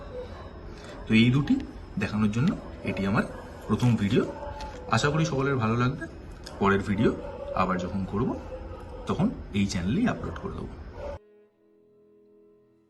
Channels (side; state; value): both; identical; correlation 1.00